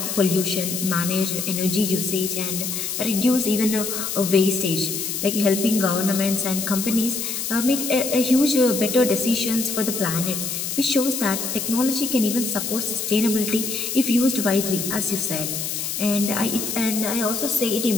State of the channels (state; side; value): noise; left; hiss, 3 dB below the sound